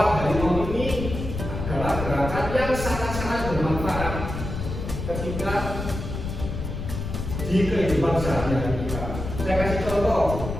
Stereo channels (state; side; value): noise; left; rumble, 6 dB below the sound